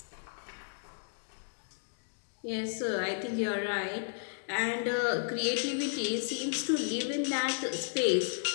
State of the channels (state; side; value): silent; right; digital silence